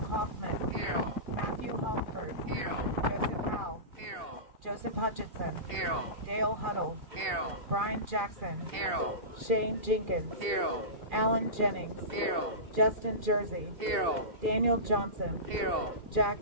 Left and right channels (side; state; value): left; late; 2.7 ms